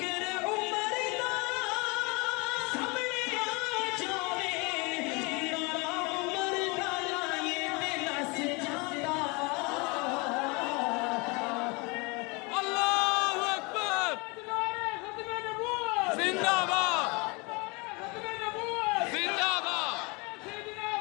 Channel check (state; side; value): quieter; right; 28.4 dB